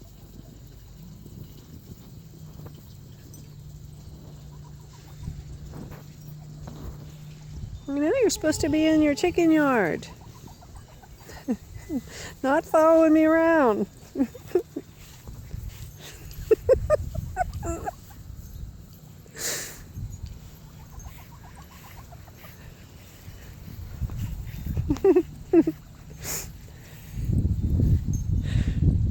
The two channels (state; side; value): identical; both; correlation 1.00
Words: know, you're supposed to be in your chicken yard. Not following me around.